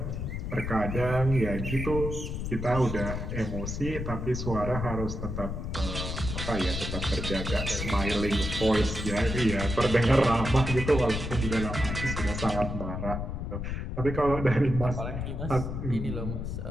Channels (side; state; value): left; noise; rumble, 4 dB below the sound